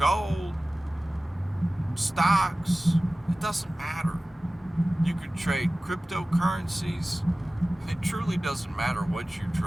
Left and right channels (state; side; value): normal; both; correlation 0.97